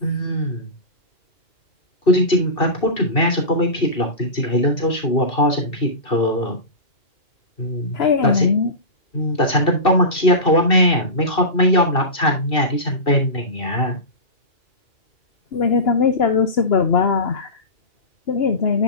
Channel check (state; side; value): late; right; 2.7 ms